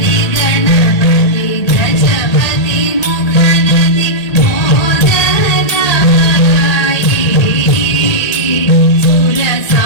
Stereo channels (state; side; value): late; right; 1.8 ms